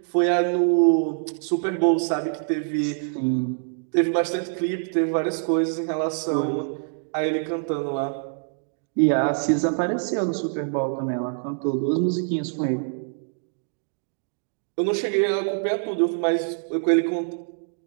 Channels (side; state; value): left; silent; digital silence